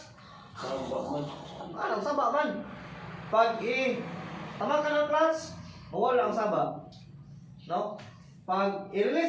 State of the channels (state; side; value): identical; both; correlation 1.00